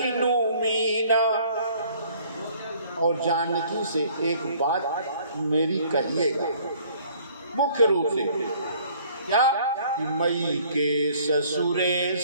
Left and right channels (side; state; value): both; inverted; correlation -0.57